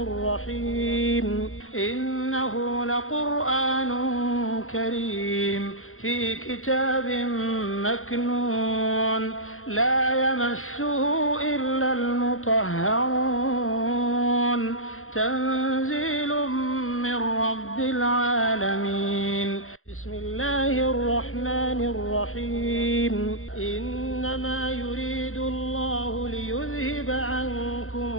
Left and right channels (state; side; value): late; right; 0.61 ms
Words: الرحيم إنه لقرآن كريم في كتاب مكنون لا يمسه إلا المطهرون تنزيل من رب العالمين بسم الله الرحمن الرحيم إنما يريد الله ليذهب عنكم